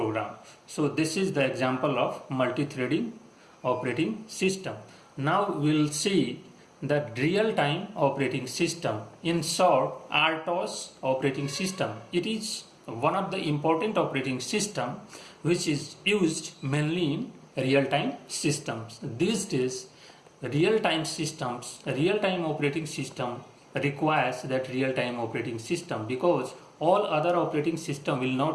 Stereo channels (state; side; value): identical; both; correlation 1.00